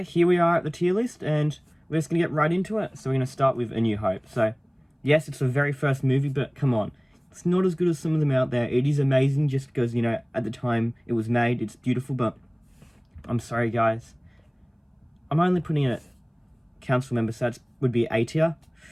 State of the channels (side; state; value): both; identical; correlation 1.00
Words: here we are at the tier list, and we're just going to get right into it. So we're going to start with A New Hope. So, yes, it's the very first movie, but come on. It's not as good as some of them out there. It is amazing just because, at the time it was made, it's beautiful, but I'm sorry, guys. I'm only putting it at council member, so that would be A tier.